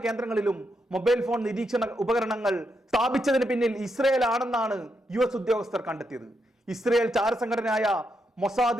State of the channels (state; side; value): normal; both; correlation 0.82